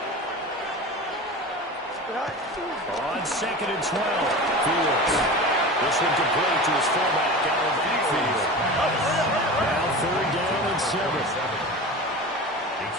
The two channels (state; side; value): normal; both; correlation 0.31